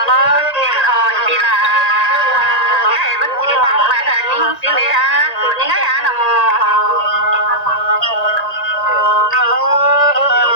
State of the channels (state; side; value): late; right; 1.9 ms